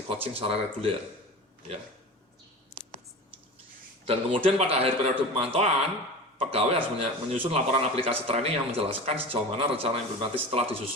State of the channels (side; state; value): both; normal; correlation 0.32